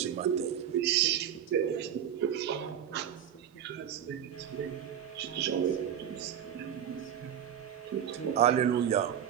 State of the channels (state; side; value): quieter; left; 9.4 dB